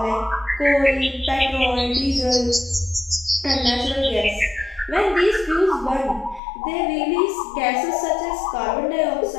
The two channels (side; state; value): right; drops out; at 6.4 s